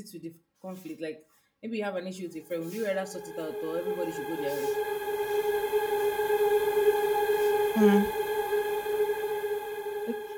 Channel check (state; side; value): identical; both; correlation 1.00